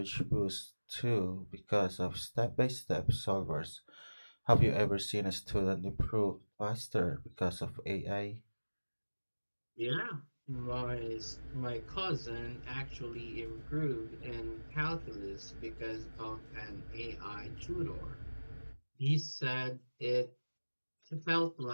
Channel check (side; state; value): both; inverted; correlation -1.00